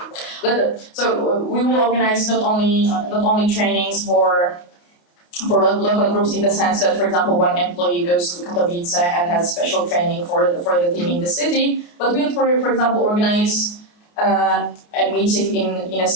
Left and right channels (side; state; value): right; late; 28 ms